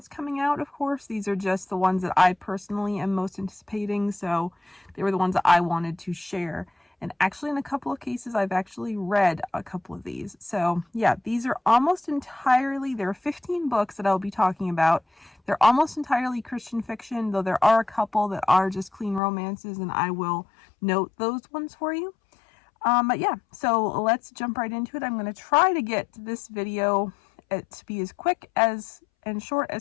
coming out, of course. These are just the ones that I personally am most anticipating, so they were the ones that I wanted to share. And actually, in a couple of cases, I've actually read a couple of these. So yeah, these are almost entirely, there are 15 books that I'll be talking about. They're almost entirely Christian fiction, though there are a couple that are just clean romances, and I will note those ones for you. But yeah, so let's jump right into it. I'm going to try to get this video to be as quick as and short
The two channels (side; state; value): right; drops out; at 19.2 s